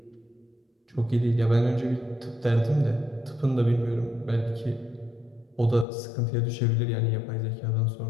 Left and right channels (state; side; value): drops out; right; at 5.9 s